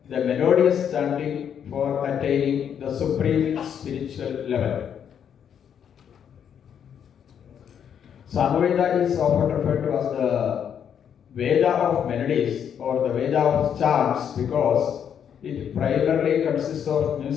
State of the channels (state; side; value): quieter; right; 8.4 dB